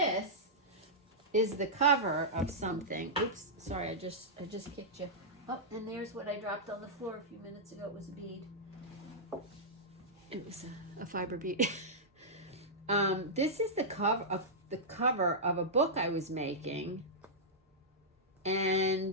is the cover of something. Oops, sorry, I just kicked you. Oh, and there's what I dropped on the floor a few minutes ago. It was a bead. It was a fiber bead. This is the cover of a book I was making.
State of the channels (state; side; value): normal; both; correlation -0.11